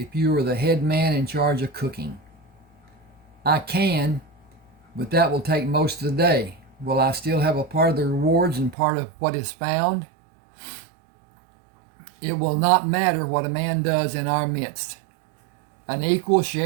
you are the head man in charge of cooking. I can, but that will take most of the day. Will I still have a part of the rewards and part of what is found? It will not matter what a man does in our midst. An equal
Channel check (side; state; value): left; drops out; at 8.8 s